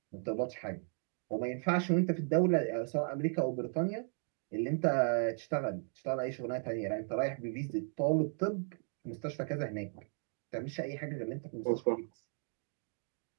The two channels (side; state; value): left; silent; 54 dB below the other